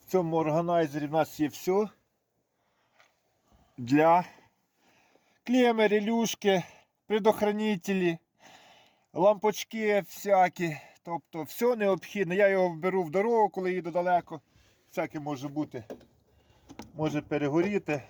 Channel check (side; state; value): both; identical; correlation 1.00